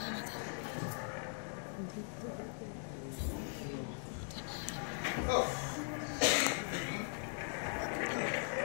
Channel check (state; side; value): silent; right; 51 dB below the other